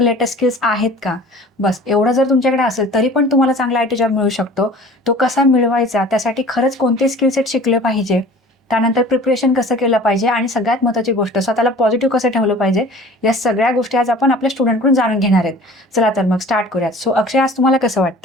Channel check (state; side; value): normal; both; correlation 0.45